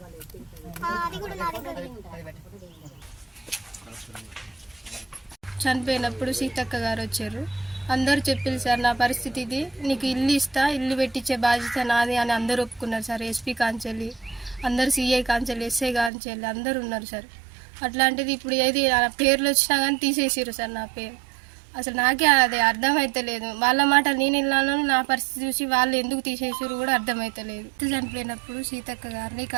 చనిపోయినప్పుడు సీతక్క గారు వచ్చారు. అందరూ చెప్పారు సార్ నా పరిస్థితి ఇది, నీకు ఇల్లు ఇస్తా, ఇల్లు పెట్టించే బాధ్యత నాది అని అందరూ ఒప్పుకున్నారు సార్. ఎస్పీ కాంచెల్లి అందరు, సిఐ కాంచెల్లి, ఎస్ఐ కాంచెల్లి అందరూ ఉన్నారు సార్. అట్లాంటిది ఇప్పుడు ఏది పేర్లు వచ్చినా కానీ తీసేసారు సార్ నా పేరు. అసలు నాకే అది అర్థమైతలేదు. వాళ్ళ మాట నేను వెళ్ళాను, నా పరిస్థితి చూసి వాళ్ళు ఎందుకు తీసేసారు కూడా అర్థమైతలేదు. చనిపోయినప్పుడు సీతక్క గారిని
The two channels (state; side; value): drops out; left; at 16.1 s